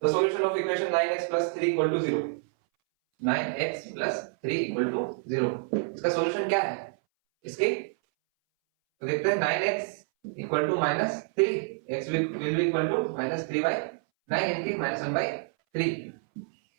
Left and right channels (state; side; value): silent; left; 59 dB below the other